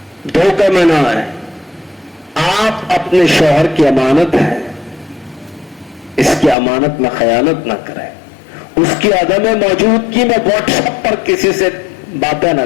धोखे में ना आए। आप अपने शौहर की अमानत है, इसकी अमानत में खयानत ना करें, उसकी अदम मौजूदगी में व्हाट्सएप पर किसी से बातें ना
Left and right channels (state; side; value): drops out; right; at 6.6 s